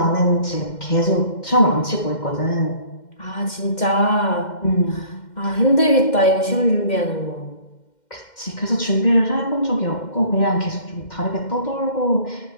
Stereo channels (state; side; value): late; right; 2.1 ms